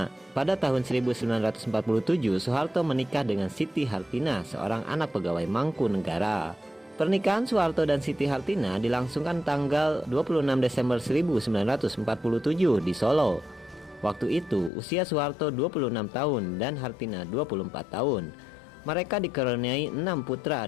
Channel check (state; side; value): drops out; right; at 14.7 s